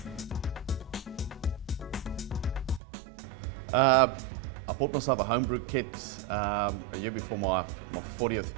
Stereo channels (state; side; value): drops out; left; at 2.8 s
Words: I bought myself a homebrew kit a year before my 40th